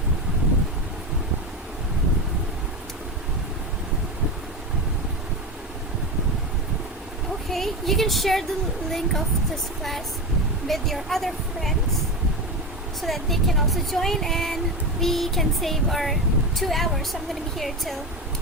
Okay, you can share the link of this class with your other friends so that they can also join and we can save our 2 hours. So I'm going to be here till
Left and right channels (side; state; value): both; normal; correlation 0.20